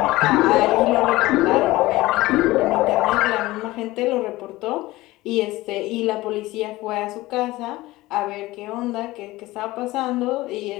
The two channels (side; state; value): right; quieter; 18.7 dB